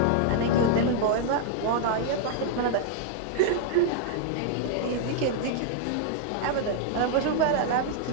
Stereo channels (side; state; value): both; different; correlation -0.01